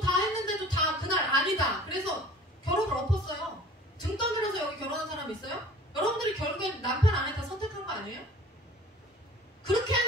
다 했는데도 다 그날 아니다. 그래서 결혼을 엎었어요. 등 떠밀어서 여기 결혼한 사람 있어요? 여러분들이 결국엔 남편 아내 다 선택한 거 아니에요? 그렇게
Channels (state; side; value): normal; both; correlation 0.46